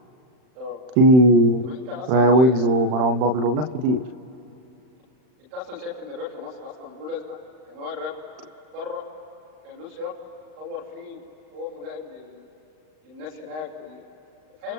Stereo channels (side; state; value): left; late; 39 ms